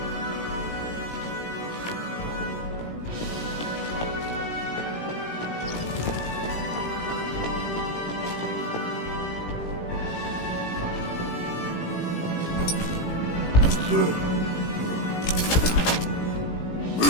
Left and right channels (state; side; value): late; right; 18 ms